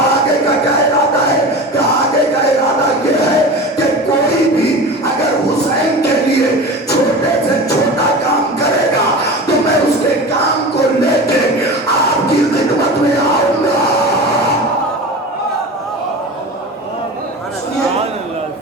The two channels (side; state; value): both; normal; correlation 0.32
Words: کا کیا ارادہ ہے؟ کہ آگے کا ارادہ یہ ہے کہ کوئی بھی اگر حسین کے لیے چھوٹے سے چھوٹا کام کرے گا تو میں اس کے کام کو لے کے آپ کی خدمت میں آؤں گا. سنیے